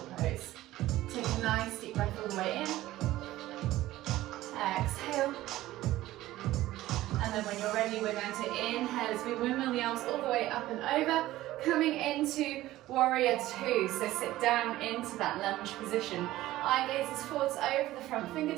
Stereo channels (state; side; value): quieter; left; 15.8 dB